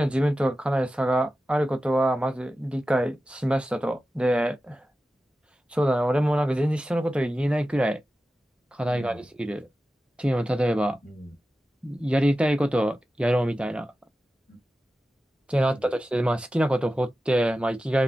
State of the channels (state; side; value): normal; both; correlation 0.94